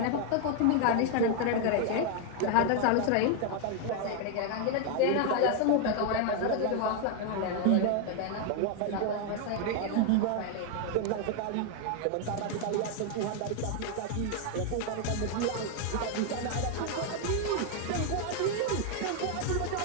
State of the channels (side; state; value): both; different; correlation 0.00